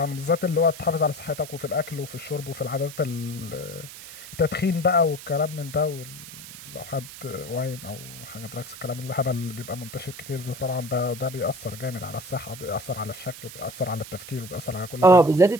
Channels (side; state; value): right; noise; hiss, 14 dB below the sound